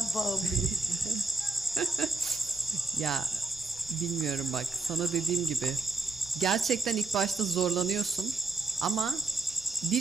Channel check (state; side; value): quieter; left; 3.5 dB